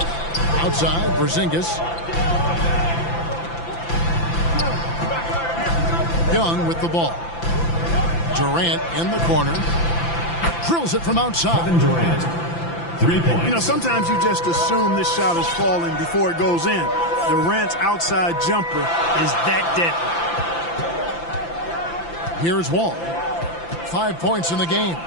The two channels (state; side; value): late; right; 5.9 ms